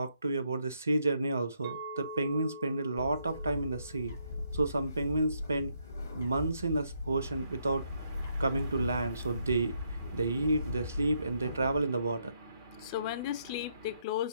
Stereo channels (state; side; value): inverted; both; correlation -0.75